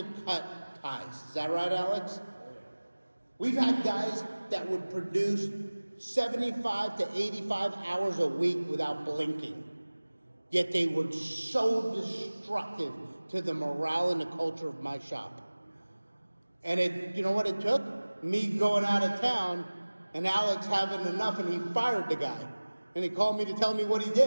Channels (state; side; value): inverted; both; correlation -1.00